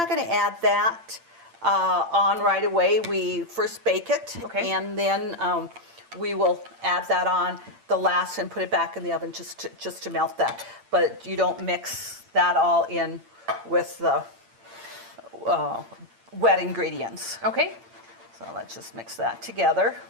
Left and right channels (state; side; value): late; left; 8.8 ms